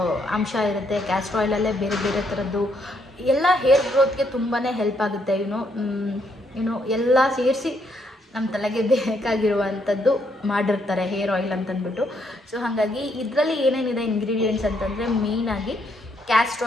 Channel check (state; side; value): normal; both; correlation 0.73